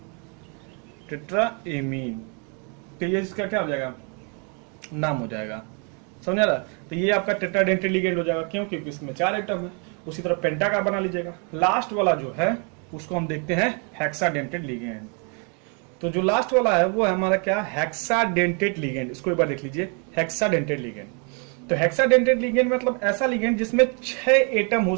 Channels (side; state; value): left; quieter; 37.0 dB